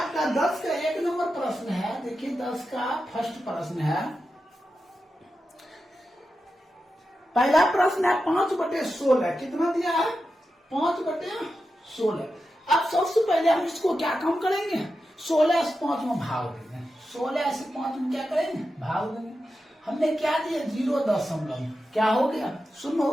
10 का 1 नंबर प्रश्न है। देखिए 10 का फर्स्ट प्रश्न है। पहला प्रश्न है 5/16। कितना दिया है, 5/16। अब सबसे पहले हम इसको क्या काम करेंगे, 16 से 5 में भाग देंगे। 16 से 5 में क्या करेंगे, भाग देंगे। हमने क्या दिया, 0 क्या हो गया, 0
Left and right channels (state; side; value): normal; both; correlation 0.90